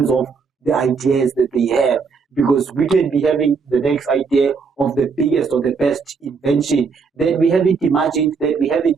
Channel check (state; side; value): quieter; left; 5.1 dB